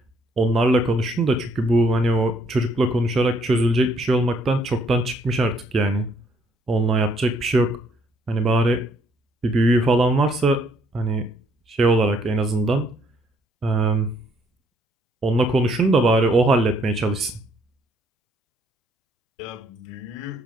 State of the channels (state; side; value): normal; both; correlation 0.67